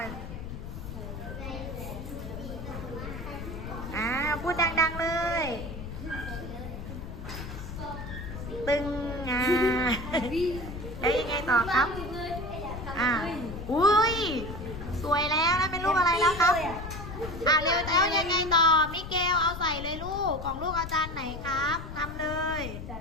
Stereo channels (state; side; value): noise; left; rumble, 9 dB below the sound